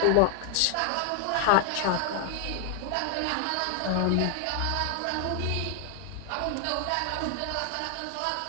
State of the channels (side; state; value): both; different; correlation 0.00